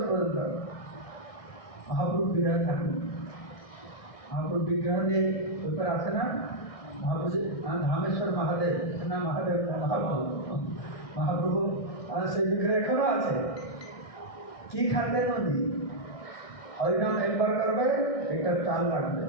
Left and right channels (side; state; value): right; late; 1.6 ms